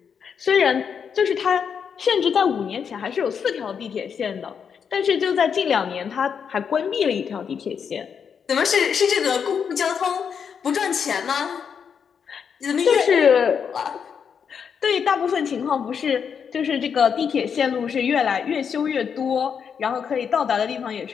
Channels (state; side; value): quieter; right; 7.0 dB